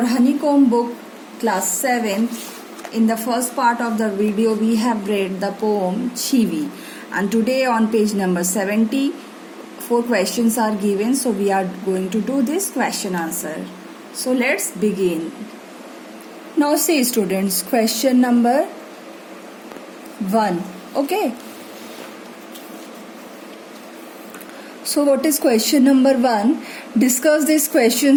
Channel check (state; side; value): identical; both; correlation 1.00